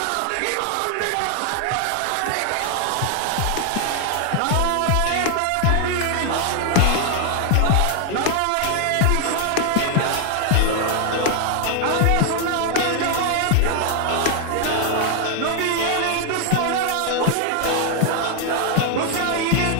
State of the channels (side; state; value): both; different; correlation 0.00